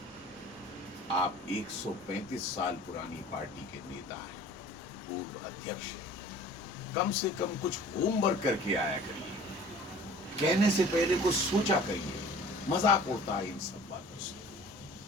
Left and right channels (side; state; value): right; noise; rumble, 26 dB below the sound